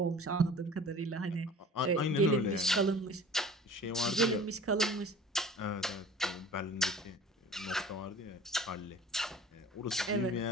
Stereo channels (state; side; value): normal; both; correlation 0.44